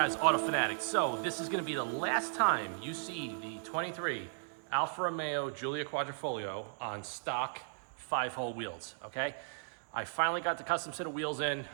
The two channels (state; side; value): silent; left; digital silence